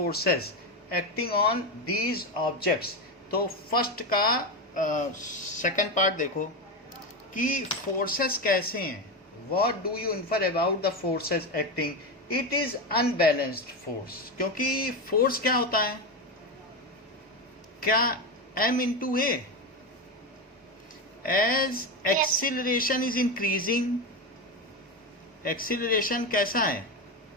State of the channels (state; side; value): normal; both; correlation 0.15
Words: acting on these objects. तो first का second part देखो कि फोर्सेस कैसे हैं। What do you infer about the forces acting? It is unbalanced force. क्योंकि force क्या होता है? क्या m into a. As acceleration is increasing, acceleration कैसा है?